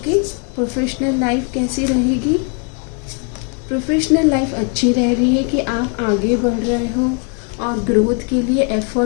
प्रोफेशनल लाइफ कैसी रहेगी? प्रोफेशनल लाइफ अच्छी रह रही है कि आप आगे बढ़ रहे हो और ग्रोथ के लिए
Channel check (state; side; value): quieter; right; 37.4 dB